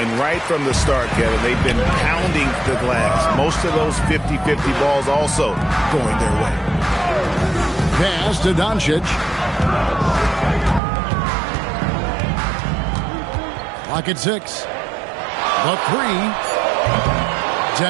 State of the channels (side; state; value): left; drops out; at 10.8 s